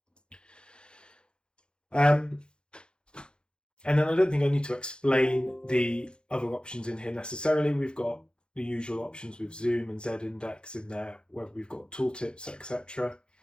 And then I don't think I need to explain the other options in here necessarily. We've got the usual options with zoom and z-index in there, where we've got tooltips, etc.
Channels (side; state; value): right; late; 0.050 ms